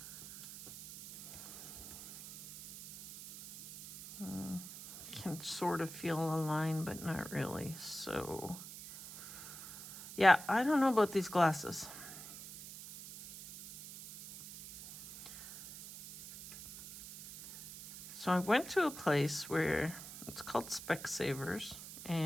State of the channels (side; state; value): right; noise; hiss, 12 dB below the sound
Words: can sort of feel a line, but not really. So, yeah, I don't know about these glasses. So I went to a place where it's called Specsavers,